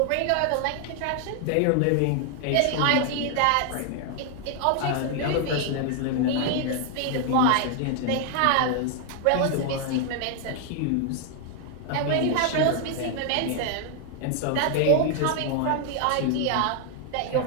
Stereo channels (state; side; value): different; both; correlation 0.00